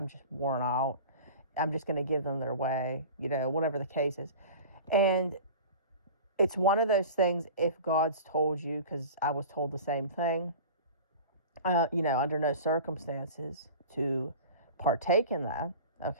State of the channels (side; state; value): both; inverted; correlation -0.37